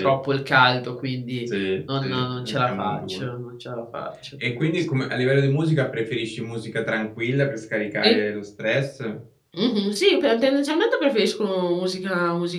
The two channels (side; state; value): both; identical; correlation 1.00